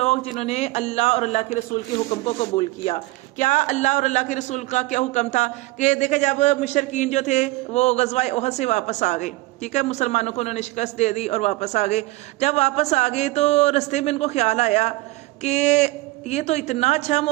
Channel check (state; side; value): quieter; left; 20.0 dB